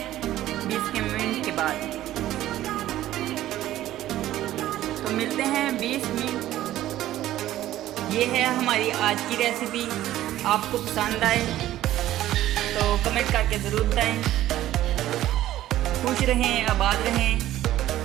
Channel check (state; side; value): quieter; left; 13.9 dB